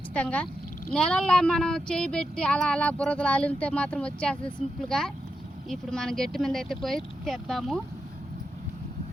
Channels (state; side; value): normal; both; correlation 0.87